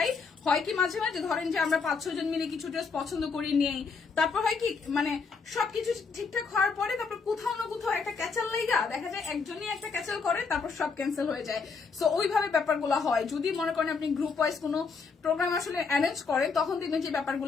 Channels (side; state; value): right; quieter; 5.0 dB